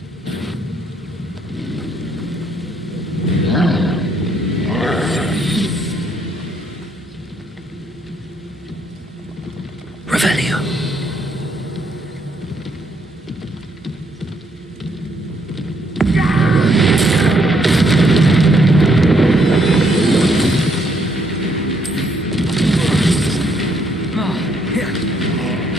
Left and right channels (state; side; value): normal; both; correlation 0.71